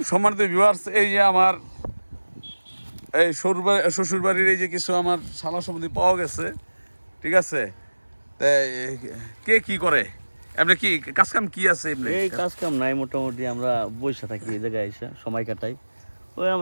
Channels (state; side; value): inverted; both; correlation -1.00